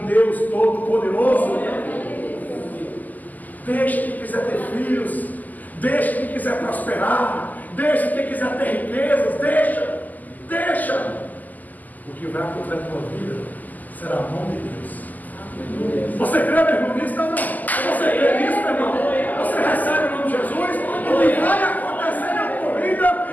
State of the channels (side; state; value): right; late; 0.082 ms